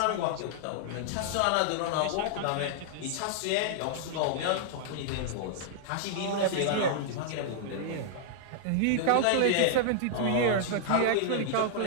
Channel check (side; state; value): both; different; correlation -0.01